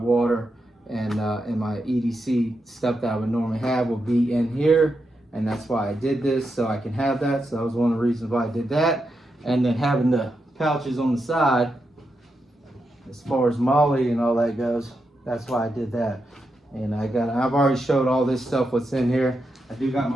water, and my EDC stuff that I would normally have will be in here. And that's why I did this, so I can have that. So that was one of the reasons why I did that. And then having the pouches on the side, as far as MOLLE and all that goes, that's why I did that. And I've already showed all this stuff what's in here. I do got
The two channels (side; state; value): both; normal; correlation 0.85